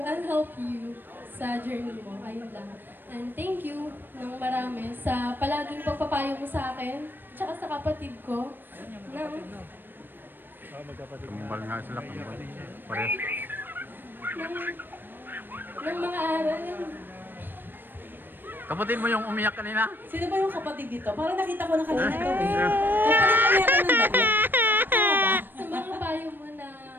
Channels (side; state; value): left; late; 0.094 ms